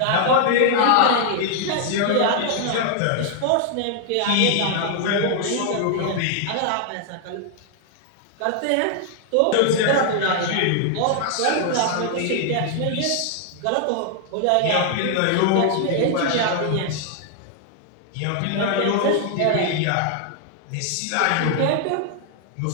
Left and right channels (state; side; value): different; both; correlation 0.00